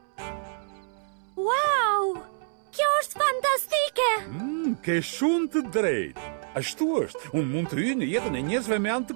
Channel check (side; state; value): left; silent; 60 dB below the other